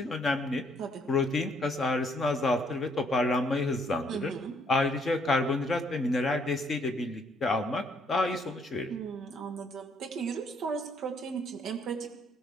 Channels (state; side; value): normal; both; correlation 0.68